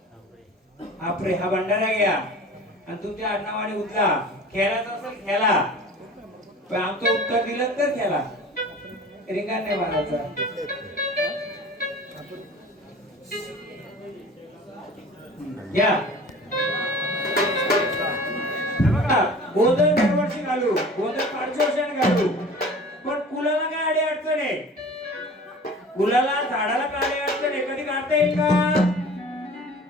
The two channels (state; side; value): normal; both; correlation 0.42